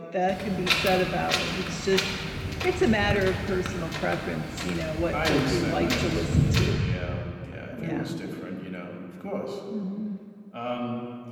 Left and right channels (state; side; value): identical; both; correlation 1.00